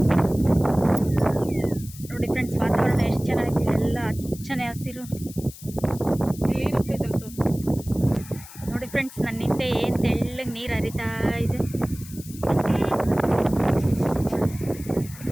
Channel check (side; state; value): left; noise; hiss, 17 dB below the sound